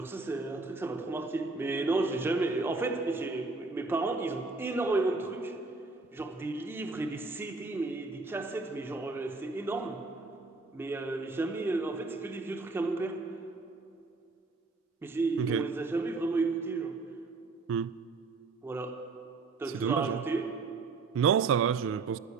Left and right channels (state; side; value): quieter; left; 3.9 dB